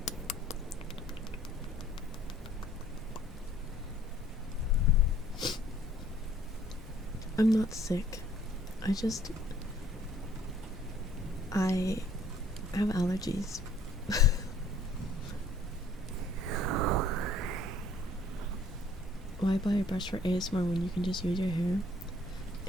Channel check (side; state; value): both; normal; correlation 0.59